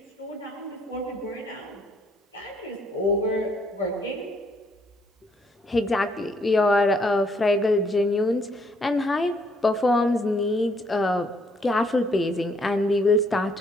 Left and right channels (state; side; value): normal; both; correlation 0.68